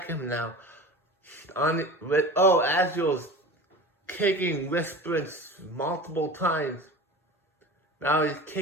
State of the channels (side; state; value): both; normal; correlation 0.35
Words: now. Azrael's kicking Whisperance multiple times. Now he's